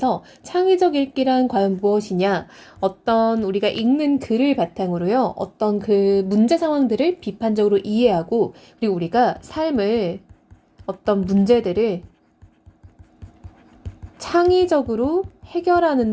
창의적 읽기란 과연 무엇이냐? 어떤 우리가 읽는 글을 바탕으로요. 어떤 그 문제 상황들을 비판적으로 이해하고 그리고 우리가 삶을 어떤 문제들을 창의적으로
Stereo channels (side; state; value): both; identical; correlation 1.00